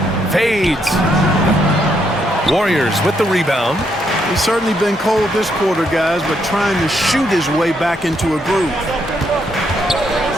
Fades. Warriors with the rebound. He's certainly been cold this quarter, guys, but trying to shoot his way back into a groove.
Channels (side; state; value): both; normal; correlation 0.75